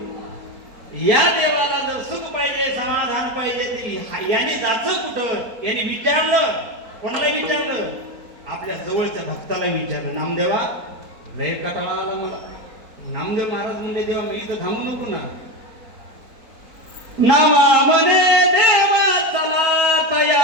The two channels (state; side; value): late; left; 4.5 ms